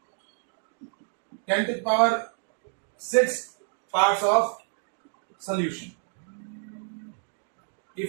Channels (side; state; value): left; silent; 59 dB below the other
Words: 10 to the power 6 parts of solution.